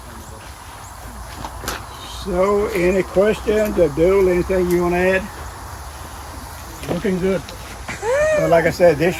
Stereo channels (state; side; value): identical; both; correlation 1.00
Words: So, any questions, Abdul, anything you want to add? Looking good. Well, like I said, this